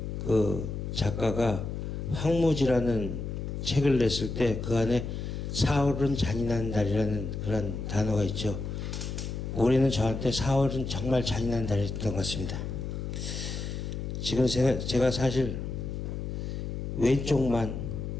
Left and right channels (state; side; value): noise; left; hum, 5 dB below the sound